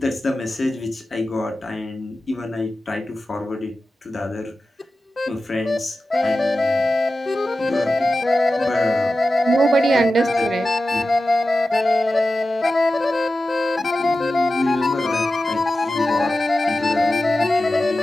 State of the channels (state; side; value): normal; both; correlation 0.93